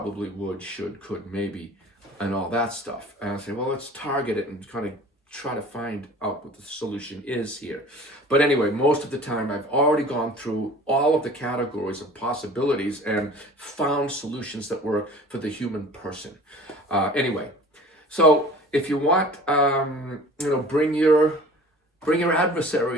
would, should, could, maybe, and all that stuff. And I say, well, let's target it and kind of try to find out what the solution is here. But anyway, most of the time I've already gone through all of the categories of possibilities and found solutions that work for the human person. Anyway, so if you want, bring your Bring your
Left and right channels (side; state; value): both; normal; correlation 0.44